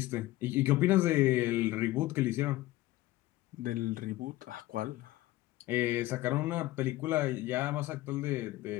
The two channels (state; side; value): quieter; right; 17.3 dB